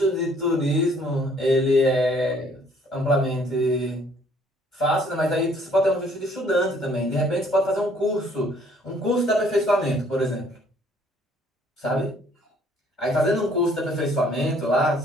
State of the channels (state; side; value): normal; both; correlation 0.61